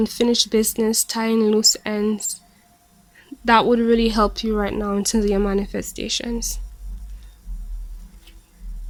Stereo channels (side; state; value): both; identical; correlation 1.00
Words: business, tying loose ends. That would really help you right now in terms of your manifestations.